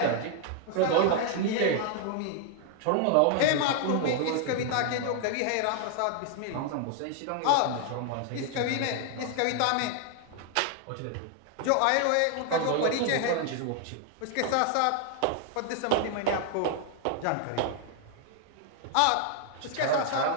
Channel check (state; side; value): different; both; correlation 0.00